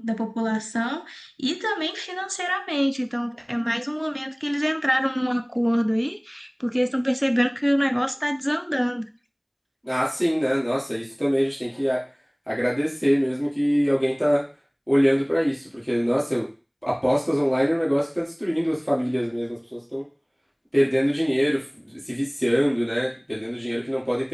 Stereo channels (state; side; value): identical; both; correlation 1.00